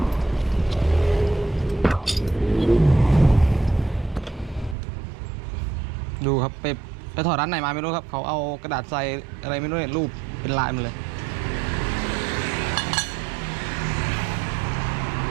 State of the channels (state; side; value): drops out; left; at 4.8 s